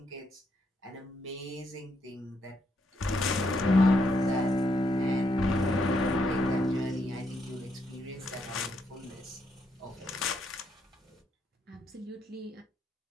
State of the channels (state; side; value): normal; both; correlation 0.77